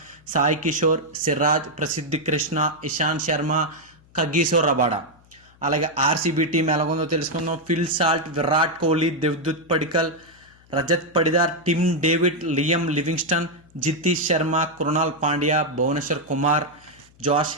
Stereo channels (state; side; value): noise; left; hum, 29 dB below the sound